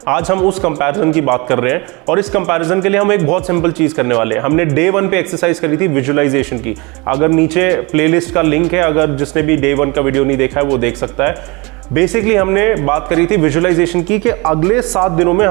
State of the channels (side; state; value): left; quieter; 26.6 dB